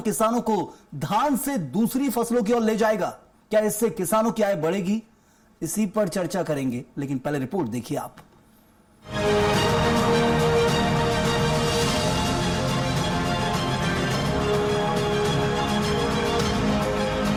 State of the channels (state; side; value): identical; both; correlation 1.00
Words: किसानों को धान से दूसरी फसलों की ओर ले जाएगा? क्या इससे किसानों की आय बढ़ेगी? इसी पर चर्चा करेंगे, लेकिन पहले रिपोर्ट देखिए आप।